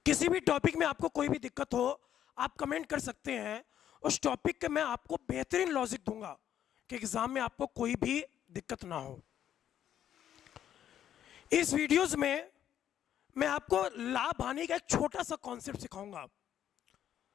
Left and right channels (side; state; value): right; quieter; 10.5 dB